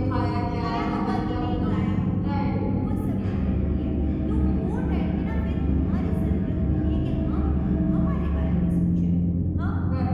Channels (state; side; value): identical; both; correlation 1.00